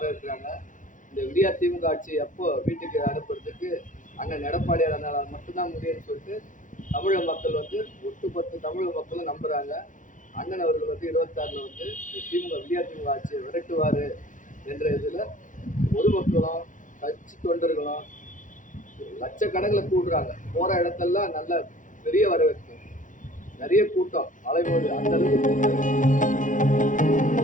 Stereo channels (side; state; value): right; late; 0.37 ms